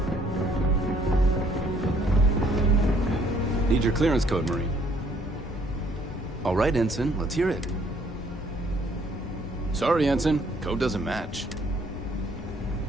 Need your clearance code, Marine. All right, Ensign, let's hear it. Sorry, Ensign, code doesn't match.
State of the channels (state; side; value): normal; both; correlation 0.63